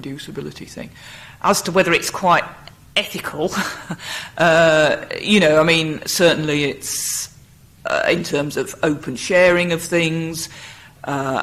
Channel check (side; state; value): both; identical; correlation 1.00